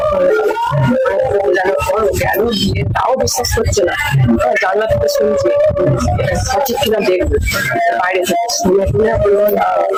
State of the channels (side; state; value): both; identical; correlation 1.00